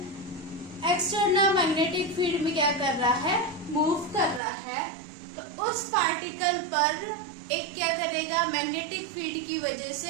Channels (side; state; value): left; drops out; at 4.4 s